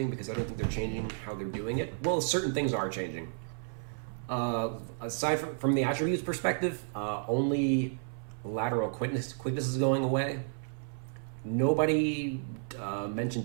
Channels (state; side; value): silent; left; 56 dB below the other